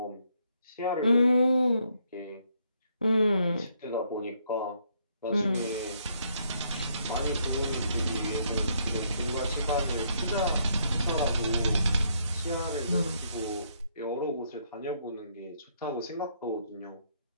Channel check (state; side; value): inverted; both; correlation -0.72